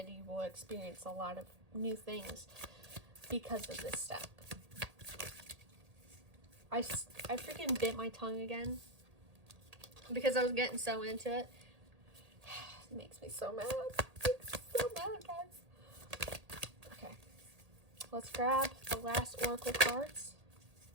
You will experience a lot of new things because of this step. I freaking bit my tongue again because I was getting so into it. It makes me so mad. It makes me so mad, guys. Okay. Let's grab the last oracle cards,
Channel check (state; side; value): late; left; 1.8 ms